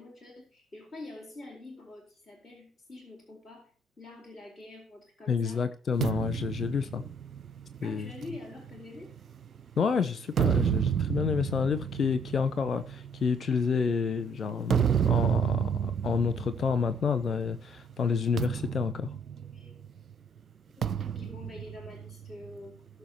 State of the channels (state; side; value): normal; both; correlation 0.63